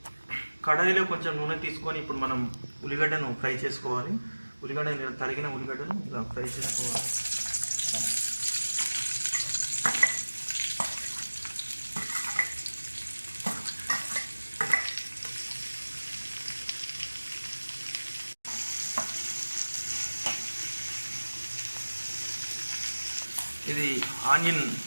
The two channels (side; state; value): both; inverted; correlation -1.00